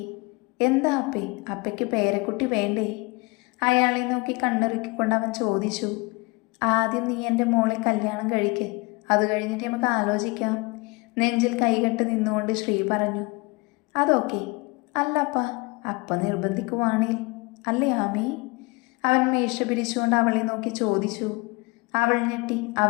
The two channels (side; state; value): right; quieter; 26.4 dB